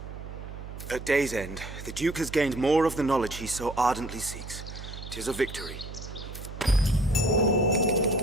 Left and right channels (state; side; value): noise; right; hum, 11 dB below the sound